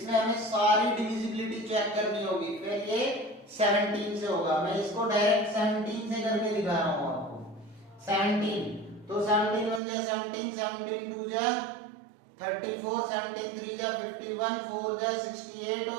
हमें सारी डिविजिबिलिटी चेक करनी होगी। फिर ये 17 से होगा, मैं इसको डायरेक्ट 17 से करके दिखा रहा हूं आपको। 17 तो 17 1 जा 17, 17 2 जा 34, 17 3 जा 51, 4 जा 68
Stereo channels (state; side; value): drops out; left; at 9.8 s